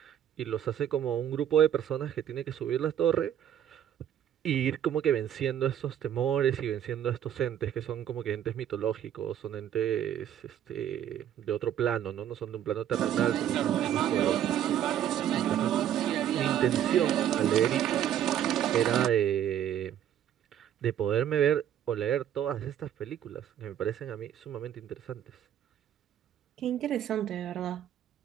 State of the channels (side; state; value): left; quieter; 10.4 dB